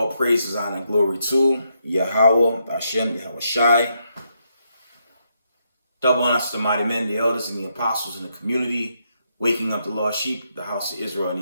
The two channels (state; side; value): inverted; both; correlation -0.78